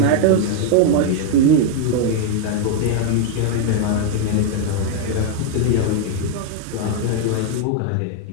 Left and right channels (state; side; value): different; both; correlation 0.00